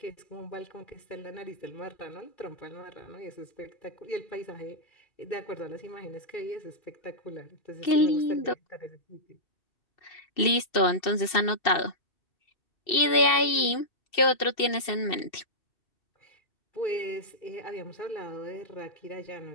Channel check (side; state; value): right; late; 2.7 ms